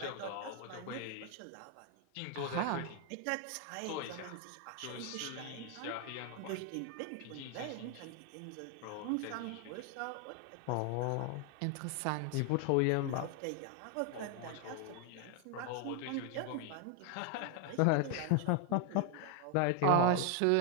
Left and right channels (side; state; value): both; different; correlation 0.01